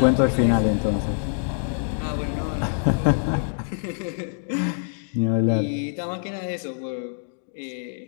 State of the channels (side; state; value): right; silent; digital silence